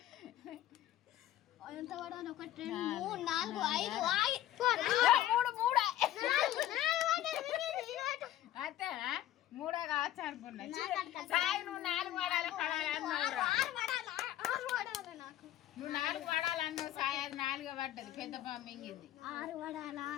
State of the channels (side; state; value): right; quieter; 13.2 dB